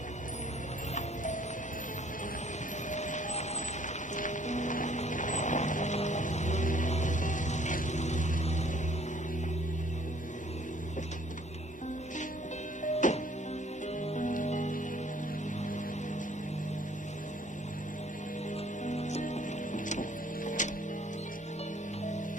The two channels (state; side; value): normal; both; correlation 0.59